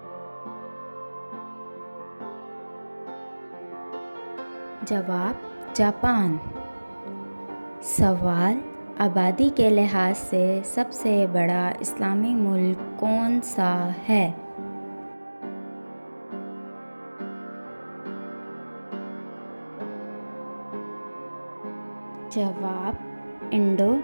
जवाब, जापान। सवाल, आबादी के लिहाज से सबसे बड़ा इस्लामी मुल्क कौन सा है? जवाब,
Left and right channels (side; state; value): both; inverted; correlation -1.00